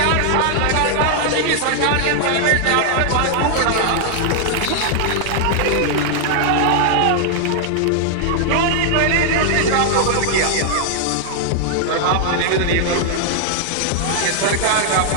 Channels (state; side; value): different; both; correlation -0.01